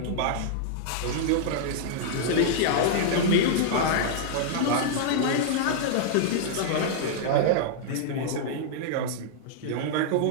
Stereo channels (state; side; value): different; both; correlation -0.01